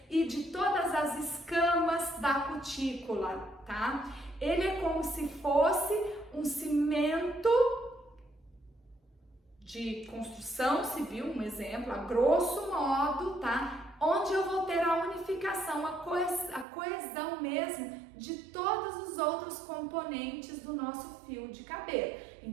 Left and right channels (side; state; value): left; drops out; at 16.7 s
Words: e de todas as escamas da cutícula, tá? Ele é como se fosse um cimento de construção civil, um exemplo, a grosso modo, tá? Onde eu vou ter a unificação, a coesão mesmo de todos os outros componentes do nosso fio de cabelo.